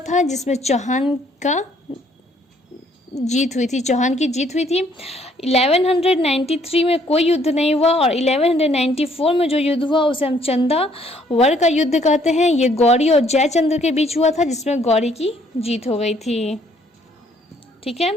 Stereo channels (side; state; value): both; normal; correlation 0.64